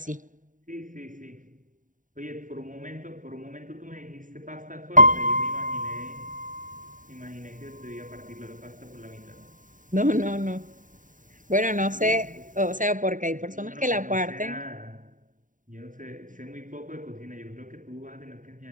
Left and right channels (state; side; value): late; left; 0.38 ms